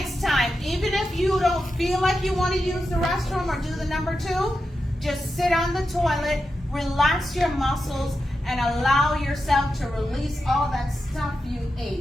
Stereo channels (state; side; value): normal; both; correlation 0.89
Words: time. Even if you don't feel like you want to use the restroom or do the number 2, just sit on the toilet, relax your muscles, and allow yourself to release all that stuff you